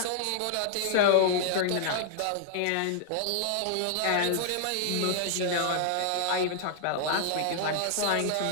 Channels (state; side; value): different; both; correlation -0.01